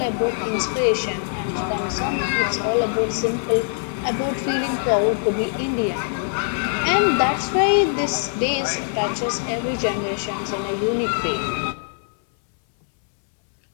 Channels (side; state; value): right; silent; 64 dB below the other